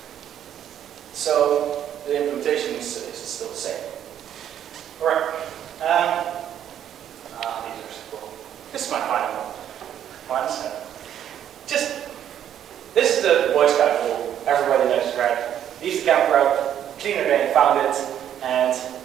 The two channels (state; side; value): quieter; left; 10.2 dB